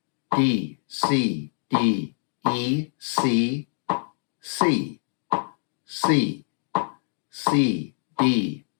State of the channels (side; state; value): right; silent; digital silence